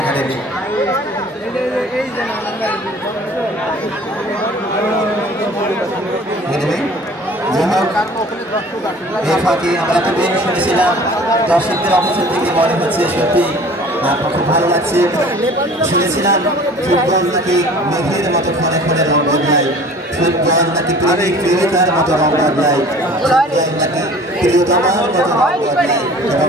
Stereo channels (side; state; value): both; normal; correlation 0.47